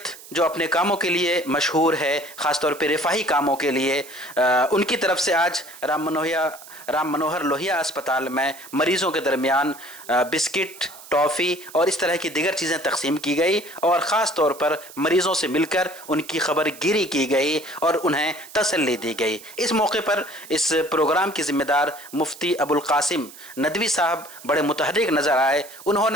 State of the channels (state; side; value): noise; right; hiss, 18 dB below the sound